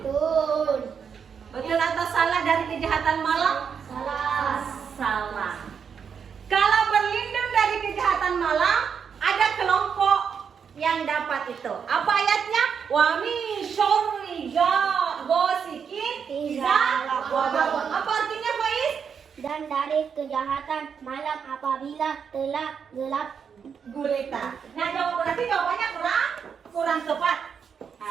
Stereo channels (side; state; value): left; quieter; 6.9 dB